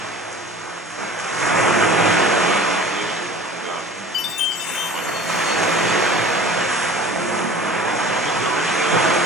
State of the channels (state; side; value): normal; both; correlation 0.42